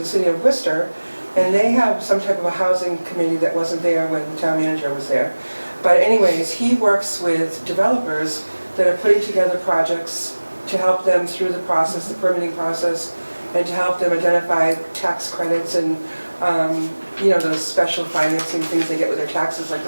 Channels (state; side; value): inverted; both; correlation -1.00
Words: city of Worcester, and they have some type of a housing committee that wasn't there when the town manager was there. But anyways, he works with developers that are putting together projects to help them through the process, the permitting process, and to help them identify tax credits and those special financing things they get with their taxes, like